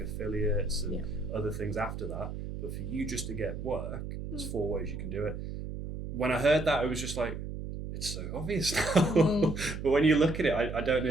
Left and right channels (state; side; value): noise; right; hum, 7 dB below the sound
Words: affiliates and other things after that. But for you just to get work, there's 4 ways you can do it. When I heard that, it was just like, it's so obvious now. But when you look at it, I don't know